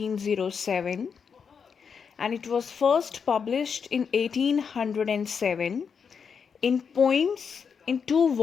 and it was first published in 1807 in poems in two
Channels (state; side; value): quieter; right; 6.4 dB